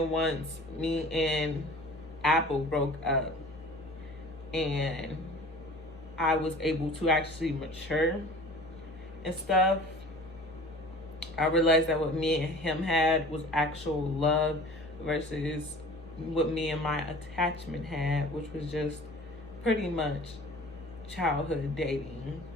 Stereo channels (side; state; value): both; normal; correlation 0.44